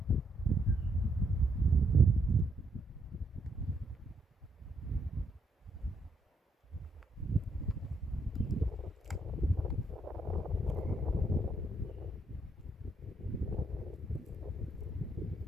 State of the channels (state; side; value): normal; both; correlation 0.75